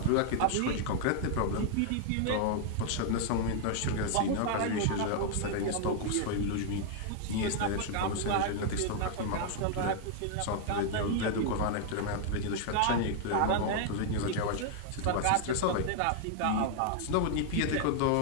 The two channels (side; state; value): both; different; correlation -0.01